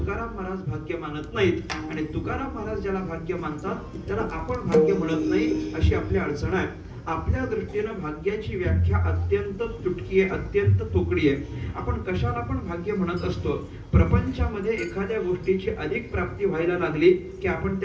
महाराज भाग्य मानत नाहीत आणि तुकाराम महाराज ज्याला भाग्य मानतात त्याला आपण भाग्य म्हणत नाही अशी आपली अडचण आहे। आपल्या दृष्टीने भाग्याची व्याख्या अत्यंत तुटकी आहे अत्यंत तोकडी आहे। आपण कशाला पण भाग्य म्हणत असतो प्रपंचामध्ये एखाद्या गोष्टीची अधिक प्राप्ती व्हायला लागली की आपण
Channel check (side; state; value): both; identical; correlation 1.00